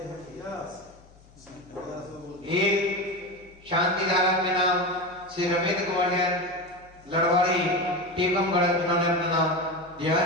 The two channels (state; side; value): noise; left; hum, 26 dB below the sound